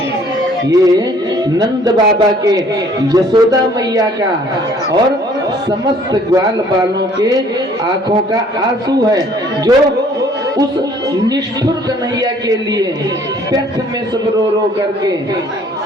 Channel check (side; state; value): both; normal; correlation 0.58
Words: ये नंद बाबा के, यशोदा मैया का और समस्त ग्वाल बालों के आंखों का आंसू है, जो उस निष्ठुर कन्हैया के लिए व्यर्थ में सब रो रो करके